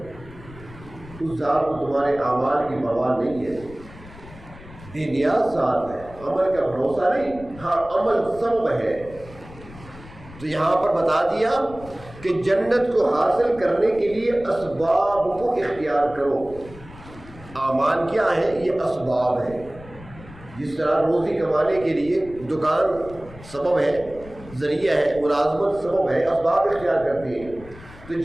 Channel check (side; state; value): left; noise; rumble, 18 dB below the sound